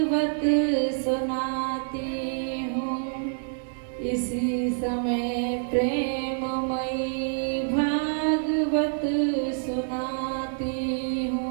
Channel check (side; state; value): left; silent; 60 dB below the other